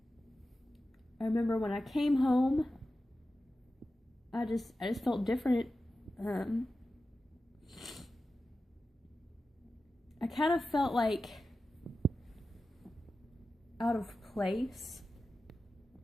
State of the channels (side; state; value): both; normal; correlation 0.93